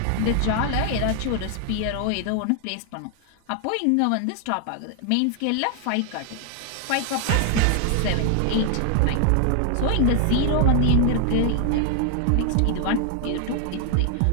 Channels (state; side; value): different; both; correlation 0.00